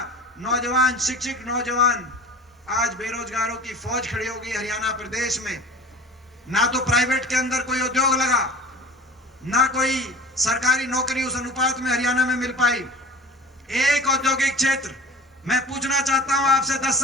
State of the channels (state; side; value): normal; both; correlation 0.40